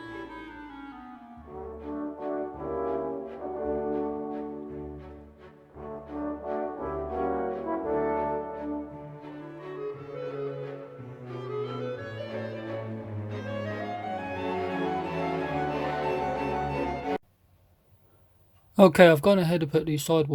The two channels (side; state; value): both; identical; correlation 1.00